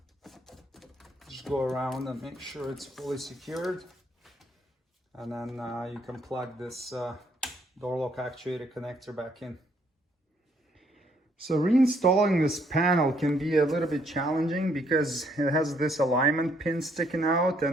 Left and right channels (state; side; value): normal; both; correlation 0.69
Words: Just go around and make sure it's fully secured. And then you can plug this door lock actuator connector back in. So reinstalling this panel can be a little bit challenging because it has this alignment pin sticking out,